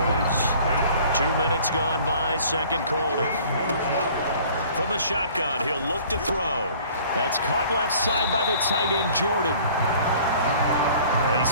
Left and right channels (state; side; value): inverted; both; correlation -0.51